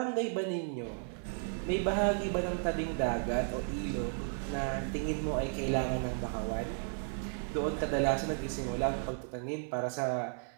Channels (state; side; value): silent; left; 55 dB below the other